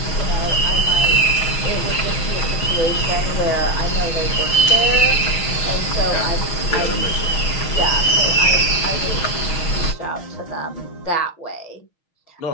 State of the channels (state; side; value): late; right; 6.2 ms